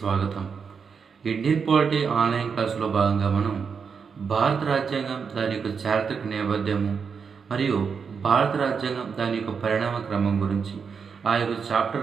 ఇండియన్ పాలిటీ ఆన్లైన్ క్లాసులో భాగంగా మనం భారత రాజ్యాంగం దాని యొక్క చారిత్రక నేపథ్యము మరియు భారత రాజ్యాంగం దాని యొక్క పరిణామ క్రమం గురించి ఆ యొక్క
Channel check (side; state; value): left; quieter; 6.0 dB